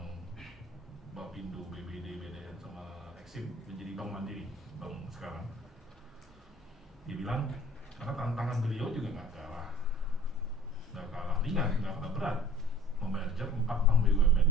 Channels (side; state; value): both; normal; correlation 0.47